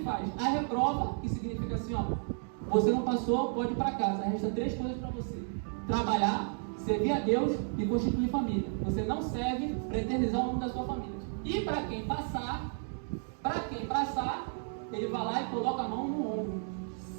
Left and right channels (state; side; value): silent; left; 56 dB below the other